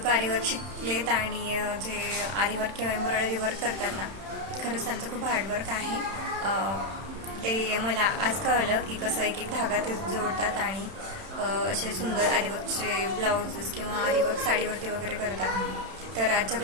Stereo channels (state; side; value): late; left; 31 ms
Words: आरीवर्क शिकलेत आणि जे आरीवर्क किंवा एम्ब्रॉयडरी वर्क करतात ना, खरंच त्यांचं खूप हार्डवर्क आहे. ते मला आज कळलं की कसं एक एक धागा ते जोडतात आणि असे सुंदर आरीवर्कचे ब्लाउजेस किंवा आरीवर्क साडीवरती वगैरे करतात. तर आजच्या